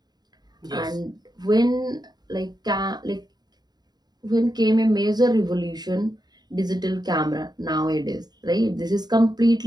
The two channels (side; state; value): left; late; 0.20 ms